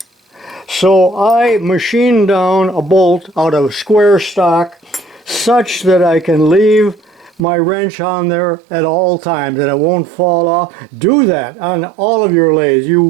So I machined down a bolt out of square stock such that I can leave my wrench on there at all times and it won't fall off. Do that on all of your lathes. You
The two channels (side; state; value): left; drops out; at 7.4 s